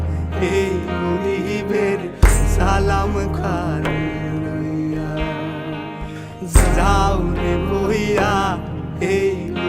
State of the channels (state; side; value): identical; both; correlation 1.00